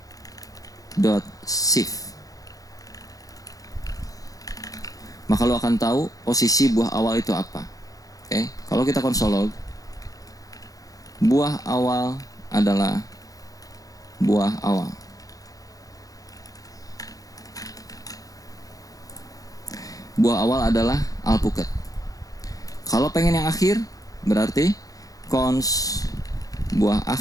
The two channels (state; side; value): late; right; 0.17 ms